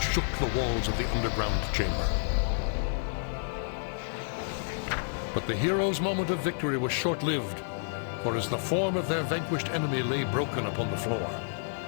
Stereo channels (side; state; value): right; silent; 55 dB below the other